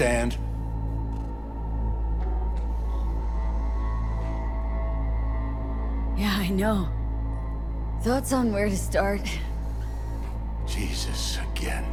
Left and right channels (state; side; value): identical; both; correlation 1.00